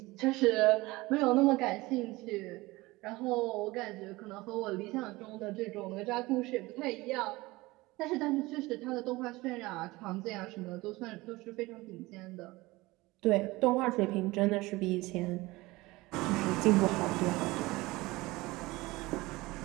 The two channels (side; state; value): left; quieter; 20.8 dB